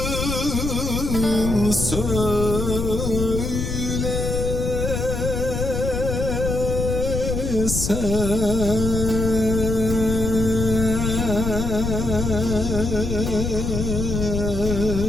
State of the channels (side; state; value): left; noise; rumble, 2 dB below the sound